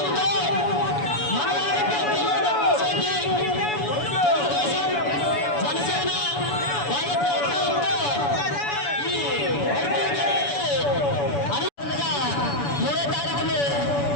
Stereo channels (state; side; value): late; right; 7.0 ms